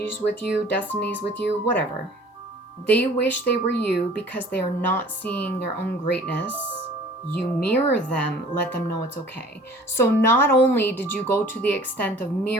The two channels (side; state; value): both; normal; correlation 0.49